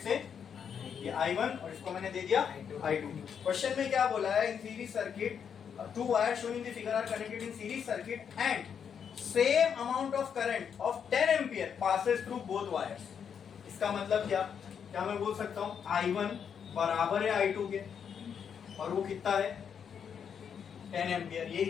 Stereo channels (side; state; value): right; quieter; 7.5 dB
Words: से ये I1 और इसको मैंने दे दिया I2। क्वेश्चन में क्या बोला है, in series circuit two wire shown in the figure are connected in series circuit and same amount of current of 10 ampere passes through both wires. इसका मतलब क्या मैं बोल सकता हूं I1 बराबर है I2 के, और वो कितना है 10 एम्पियर। यही